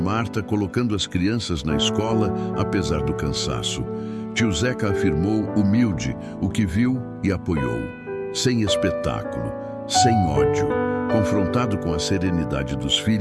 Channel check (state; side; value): identical; both; correlation 1.00